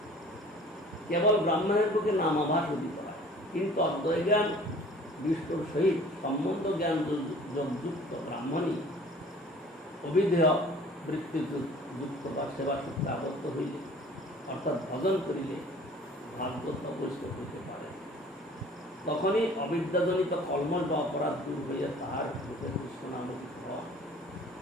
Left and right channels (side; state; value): both; normal; correlation 0.49